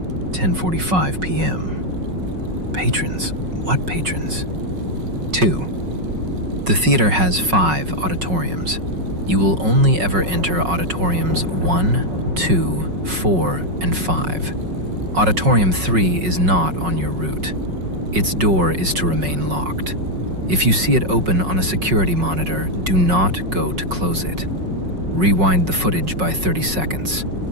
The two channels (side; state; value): left; late; 5.4 ms